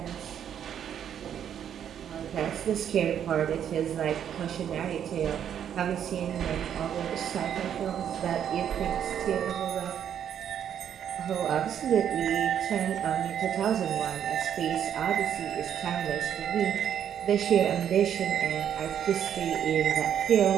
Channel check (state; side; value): quieter; left; 9.2 dB